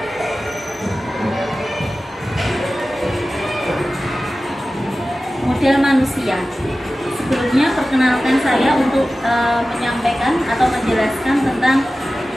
Modal manusia. Sebelumnya perkenalkan saya untuk menyampaikan atau menjelaskan tentang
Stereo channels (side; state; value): both; normal; correlation 0.95